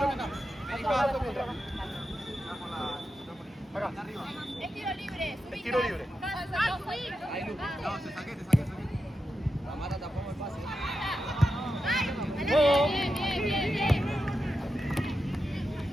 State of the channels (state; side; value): normal; both; correlation 0.88